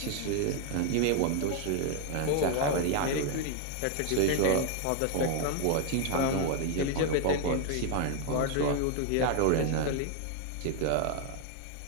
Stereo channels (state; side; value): different; both; correlation 0.00